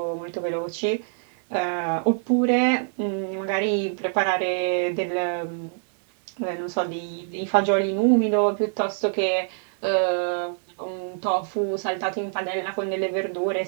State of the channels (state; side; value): silent; left; 62 dB below the other